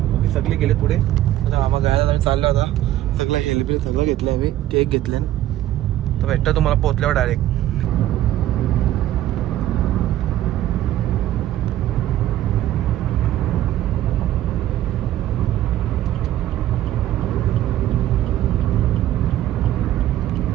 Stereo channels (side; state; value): left; quieter; 13.4 dB